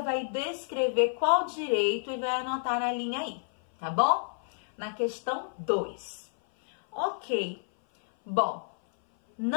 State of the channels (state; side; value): silent; right; 57 dB below the other